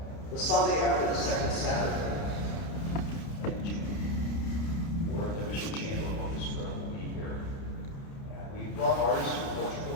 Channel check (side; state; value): right; late; 30 ms